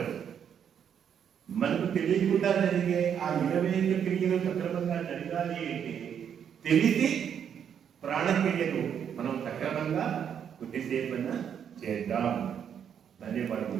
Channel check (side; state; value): left; quieter; 8.3 dB